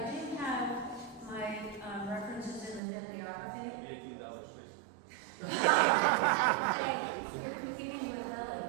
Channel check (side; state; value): left; drops out; at 2.8 s